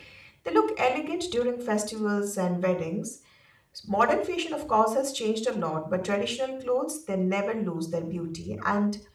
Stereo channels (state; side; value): identical; both; correlation 1.00